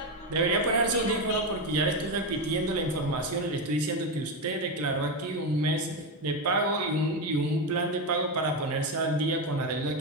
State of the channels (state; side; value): normal; both; correlation 0.11